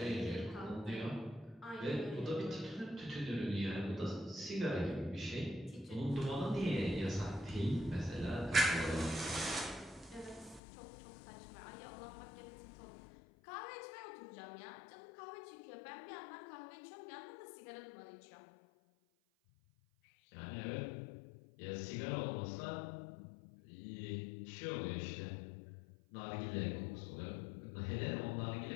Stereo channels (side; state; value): right; drops out; at 10.6 s